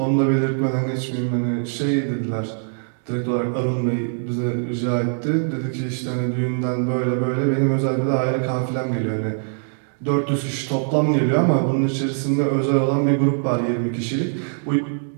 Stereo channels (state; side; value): silent; left; digital silence